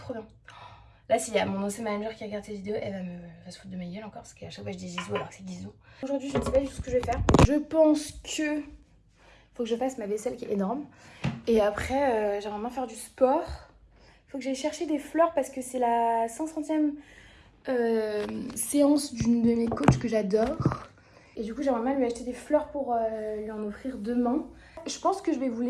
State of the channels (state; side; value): identical; both; correlation 1.00